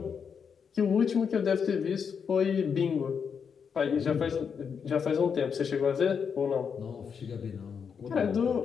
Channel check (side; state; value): right; quieter; 6.6 dB